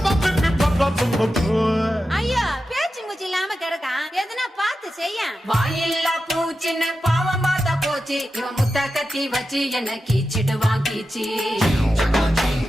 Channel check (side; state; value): both; normal; correlation 0.91